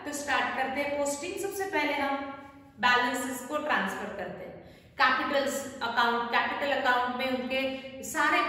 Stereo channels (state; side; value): identical; both; correlation 1.00